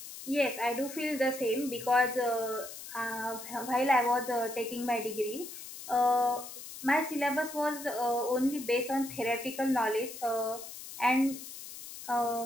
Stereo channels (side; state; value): left; noise; hiss, 12 dB below the sound